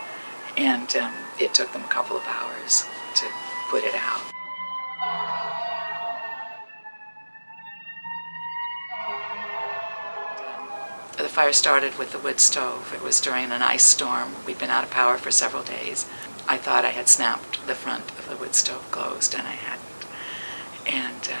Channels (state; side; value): inverted; both; correlation -1.00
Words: And it took them a couple of hours to put it out. The fire started with the wood stove. It was during an ice storm. We'd been out of power for several days. I thought I had snapped the front of the wood stove closed, and I hadn't. And